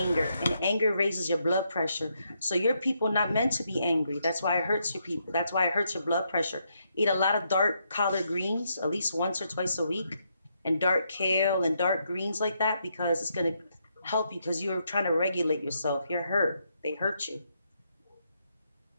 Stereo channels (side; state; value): both; inverted; correlation -0.78